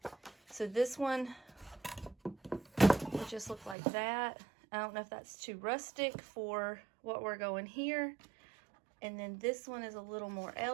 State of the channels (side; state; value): left; drops out; at 3.8 s